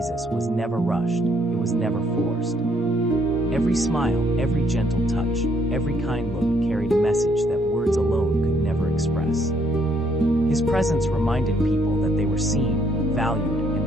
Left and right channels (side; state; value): both; normal; correlation 0.69